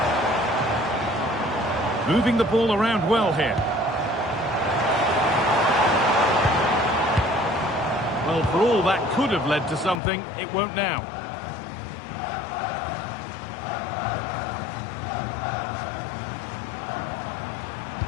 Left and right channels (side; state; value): right; drops out; at 10.0 s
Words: Moving the ball around well here. Well, for all that could have led to something, it won't now.